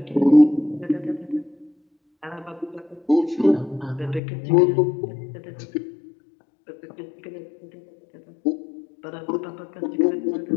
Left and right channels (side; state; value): right; drops out; at 4.2 s